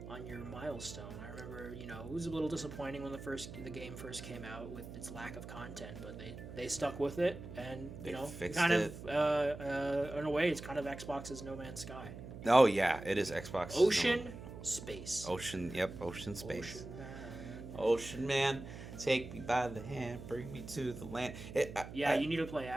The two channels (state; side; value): noise; right; hum, 12 dB below the sound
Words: milestone. I remember, it was a little disappointing when the game first came out with its lack of content, but they stuck with it, and they fixed kind it. of in a way, it's kind of Xbox's No Man's Sky. Oh yeah, it is Xbox. Ocean, space. Ocean, yep, ocean, space. Ocean man, take me by the hand, bring me to the land. You need to play